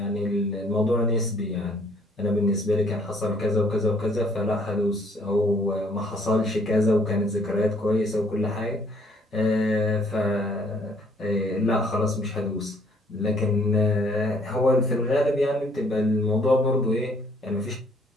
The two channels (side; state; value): both; normal; correlation 0.63